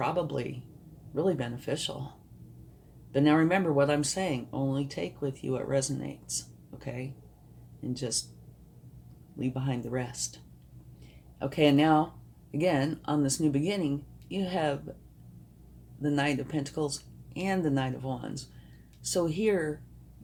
really beneficial. But now remember what I'm saying, only take with you what resonates, okay? And just leave behind the rest. Okay, and now, again, on this new beginning, you have the Knight of Pentacles and the Knight of Wands. So here,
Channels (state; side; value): identical; both; correlation 1.00